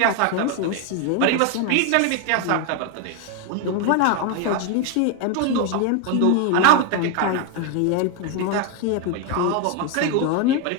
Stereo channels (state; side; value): different; both; correlation 0.01